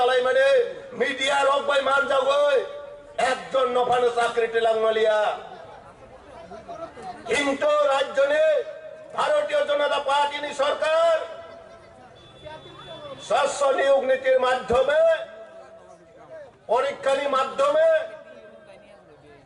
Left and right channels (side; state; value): both; identical; correlation 1.00